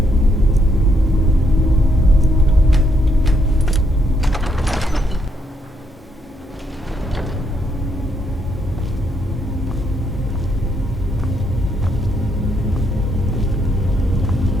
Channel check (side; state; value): both; normal; correlation 0.75